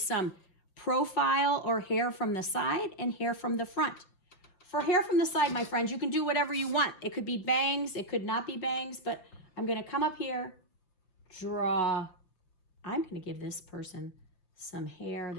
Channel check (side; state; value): right; late; 5.9 ms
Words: profile or hair from the side and hair from the front. For hair from the side, my friends, you can do whatever you want. It could be bangs, it could not be bangs, but I'm going to come up here, draw. I'm going to give this person some hair